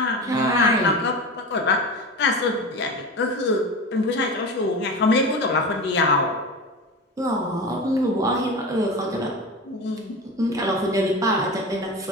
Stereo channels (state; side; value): normal; both; correlation 0.28